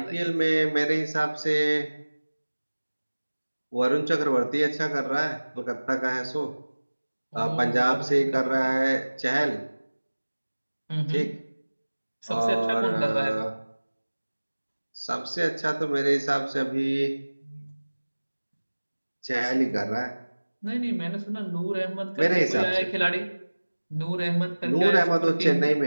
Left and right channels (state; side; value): inverted; both; correlation -1.00